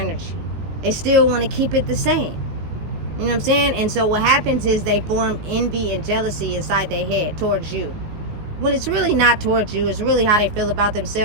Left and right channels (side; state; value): left; late; 19 ms